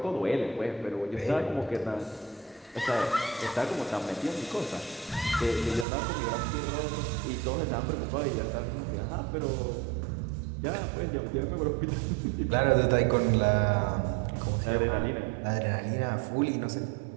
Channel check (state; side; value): drops out; left; at 5.9 s